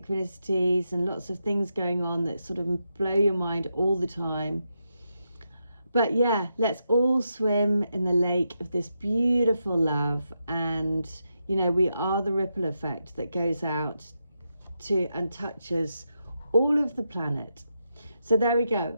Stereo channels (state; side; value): inverted; both; correlation -0.85